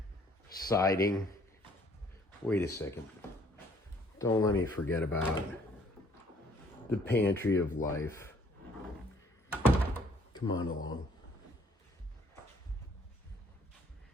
siding. Wait a second. Don't let me forget about the pantry of life. Come on along.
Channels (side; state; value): both; normal; correlation 0.61